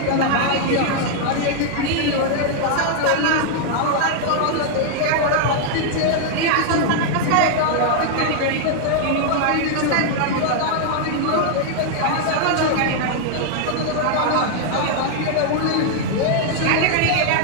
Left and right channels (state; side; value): different; both; correlation 0.00